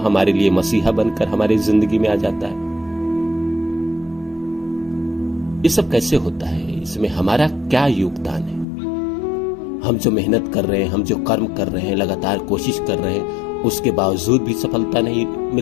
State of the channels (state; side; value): drops out; right; at 8.7 s